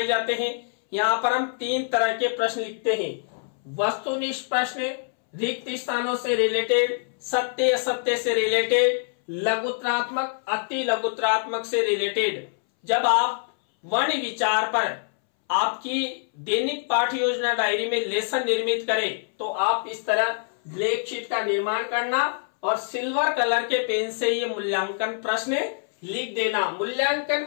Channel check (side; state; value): right; silent; 62 dB below the other